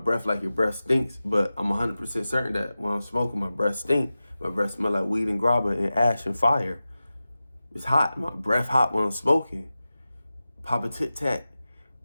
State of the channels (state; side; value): inverted; both; correlation -0.95